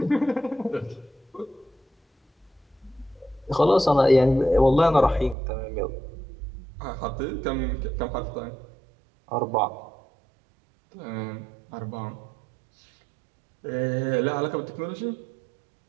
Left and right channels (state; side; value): drops out; left; at 5.4 s